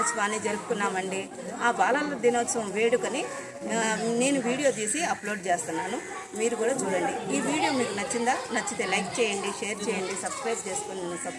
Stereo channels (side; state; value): both; identical; correlation 1.00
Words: జరుపుకున్నామండి. ఆ బాలల దినోత్సవం వేడుకని నేను వీడియో తీసి అప్లోడ్ చేస్తున్నాను. మీరు కూడా చూడండి. ఈ వీడియో మీకు నచ్చిందా? నచ్చితే లైక్ చేయండి, షేర్ చేయండి, సబ్స్క్రైబ్ చేసుకుని నన్ను